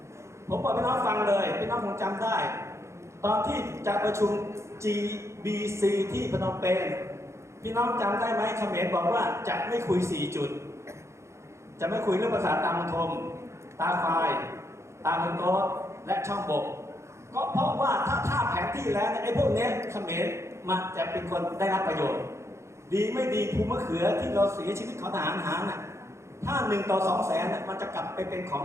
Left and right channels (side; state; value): left; late; 0.14 ms